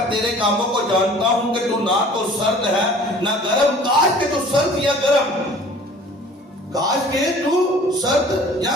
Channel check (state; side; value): normal; both; correlation 0.49